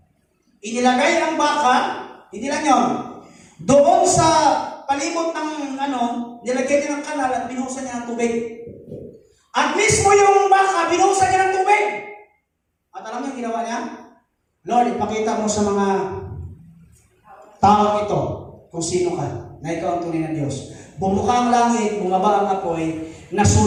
inilagay ang baka, hindi lang yun, doon sa palibot ng nilagay niya ng kanal at binuhusan niya ng tubig. At mismo yung baka, binuhusan niya ng tubig. At alam niyo yung ginawa niya? Lord, ipakita mo sa mga tao ito kung sino ka, na ikaw ang tunay na Diyos. Bumuka ang langit, bumaba ang apoy,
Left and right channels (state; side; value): identical; both; correlation 1.00